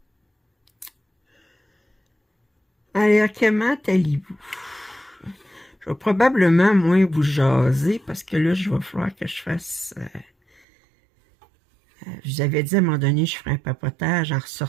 Alors, comment allez-vous? Je vais probablement moins vous jaser parce que là, je vais falloir que je fasse... je vous avais dit à un moment donné, je ferai un papotage en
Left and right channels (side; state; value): left; drops out; at 10.6 s